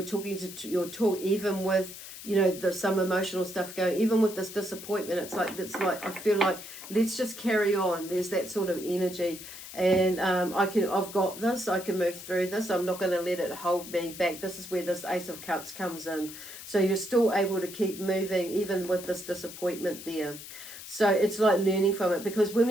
talking to your talk, even with there's some emotional stuff going, even with this disappointment. It's like I feel like, let's just carry on. There's that sort of energy, and I've got this, I can move through this, I'm not going to let it hold me back. This is where this Ace of Cups comes in. So you're still able to keep moving even with this disappointment there. So it's like learning from it, because when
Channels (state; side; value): noise; left; hiss, 13 dB below the sound